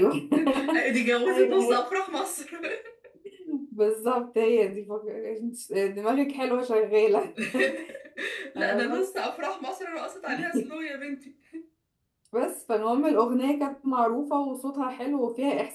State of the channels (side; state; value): both; identical; correlation 1.00